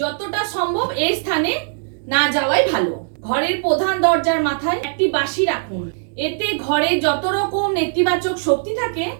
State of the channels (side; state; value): left; silent; digital silence